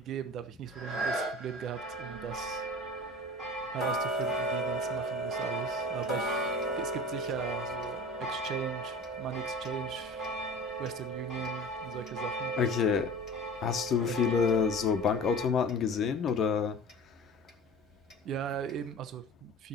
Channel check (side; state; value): both; normal; correlation 0.38